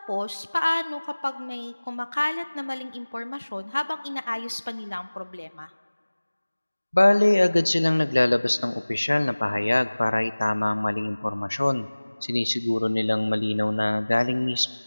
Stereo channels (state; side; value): inverted; both; correlation -1.00